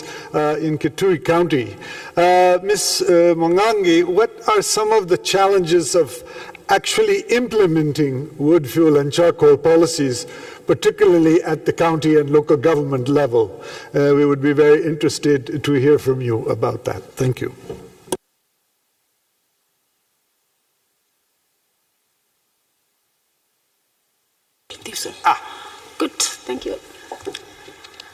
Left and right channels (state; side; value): identical; both; correlation 1.00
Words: in Kitui County. Ms. Mwangangi, what are some of the challenges of actually implementing wood, fuel, and charcoal policies, particularly at the county and local government level? We would be very interested to hear from you about that. Thank you. Good, thank you.